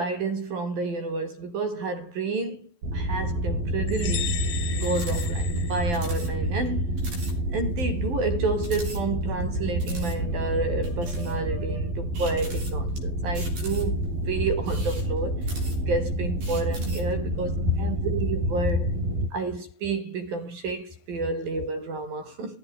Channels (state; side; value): late; left; 12 ms